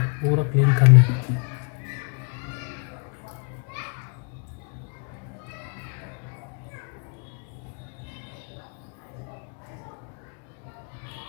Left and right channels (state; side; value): quieter; right; 39.5 dB